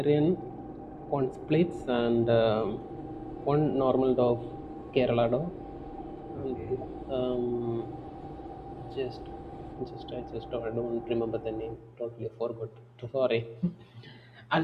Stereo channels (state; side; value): identical; both; correlation 1.00